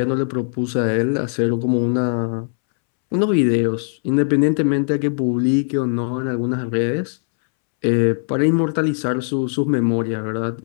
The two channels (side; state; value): right; silent; 66 dB below the other